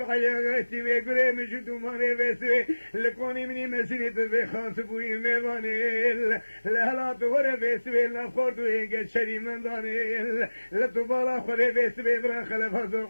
حياتي ويقري مجد ماني بسوي لكوني مني مسيني تبي خاطبوي ميواني لهلا تور بسوي لفورد وينك شري من داني لتبالا خوري بسوي برا خلف زور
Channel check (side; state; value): both; inverted; correlation -1.00